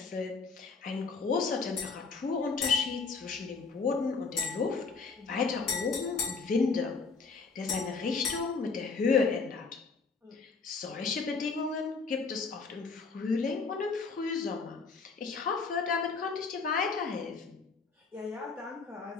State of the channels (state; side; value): quieter; right; 4.6 dB